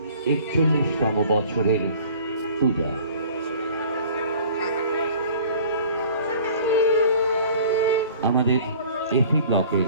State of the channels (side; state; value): both; inverted; correlation -0.48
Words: ৪১তম বছরের পূজা। আমাদের এফি